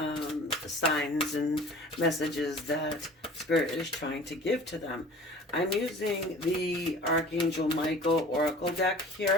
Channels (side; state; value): both; normal; correlation 0.44